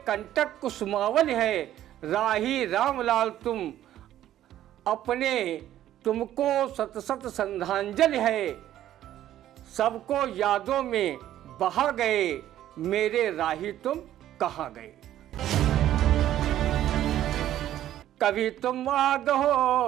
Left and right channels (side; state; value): left; quieter; 12.4 dB